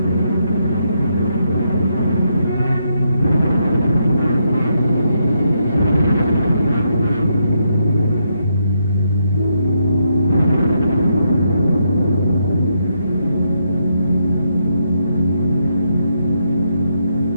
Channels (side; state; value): both; inverted; correlation -0.79